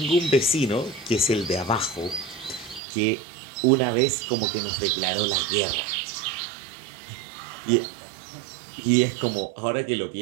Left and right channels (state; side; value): drops out; left; at 2.8 s